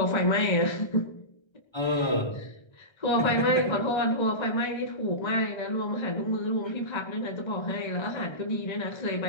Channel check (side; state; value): right; late; 1.3 ms